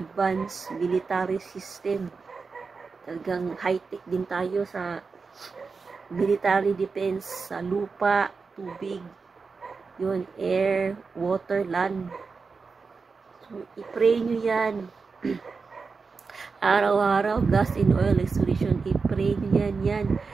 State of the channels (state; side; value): quieter; left; 4.7 dB